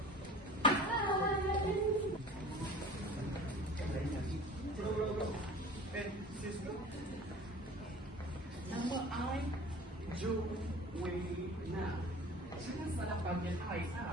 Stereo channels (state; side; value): normal; both; correlation 0.41